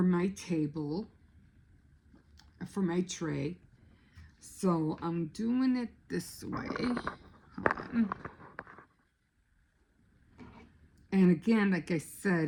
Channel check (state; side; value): identical; both; correlation 1.00